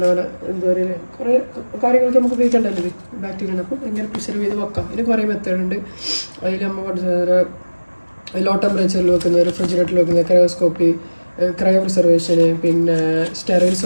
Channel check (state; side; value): inverted; both; correlation -1.00